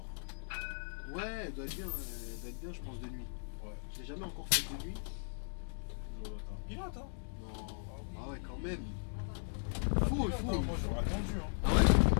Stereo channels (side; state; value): right; silent; digital silence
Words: Ouais, elle doit être bien, je pense, de nuit. Ouais. Je l'ai jamais encore fait de nuit. Pilote, hein? Non. Ah oui. Ah ouais, quand même. Pilote, Faut. hein, moi, j'aurais attendu. Hein. Ah